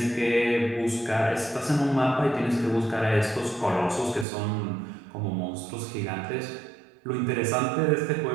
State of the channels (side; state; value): left; drops out; at 4.2 s